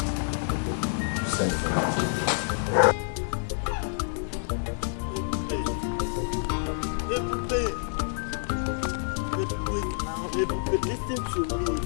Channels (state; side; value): silent; right; digital silence